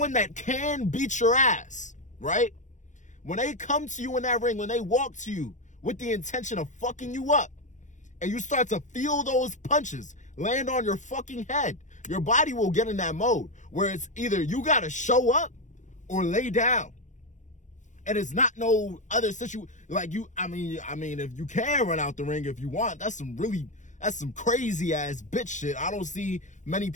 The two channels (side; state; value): right; late; 0.35 ms